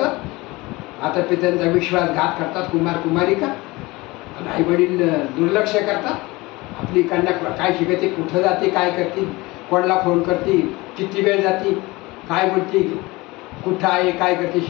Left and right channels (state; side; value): quieter; right; 22.1 dB